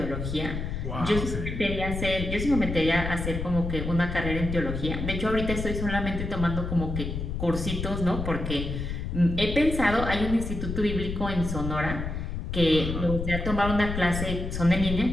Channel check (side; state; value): left; noise; rumble, 4 dB below the sound